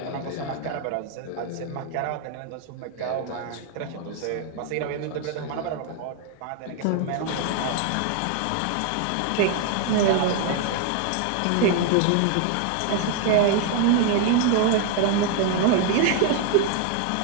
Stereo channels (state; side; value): different; both; correlation 0.00